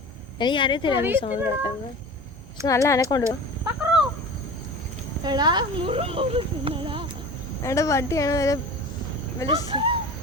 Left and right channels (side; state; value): both; normal; correlation 0.35